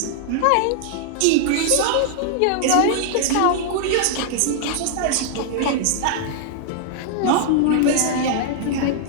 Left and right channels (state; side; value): different; both; correlation -0.01